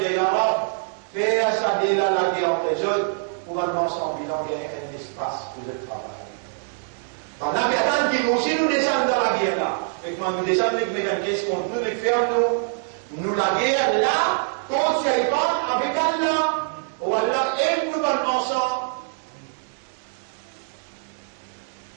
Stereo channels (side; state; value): left; silent; 63 dB below the other